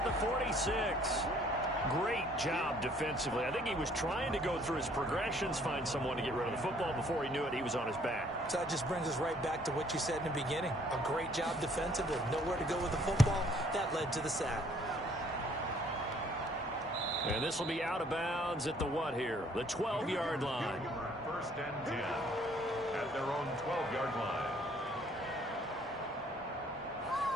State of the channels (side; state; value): both; normal; correlation 0.61